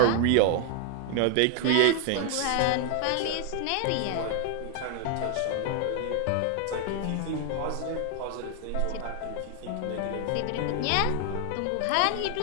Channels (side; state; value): both; different; correlation 0.00